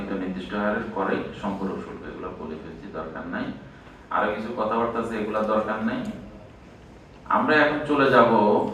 নির্দিষ্ট হারের করে সম্পূরক শুল্ক। এগুলো বলে ফেলছি, দরকার নাই। আরো কিছু কথাবার্তা আছে, এগুলা দরকার নাই। আমরা এখন চলে যাব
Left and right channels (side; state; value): both; identical; correlation 1.00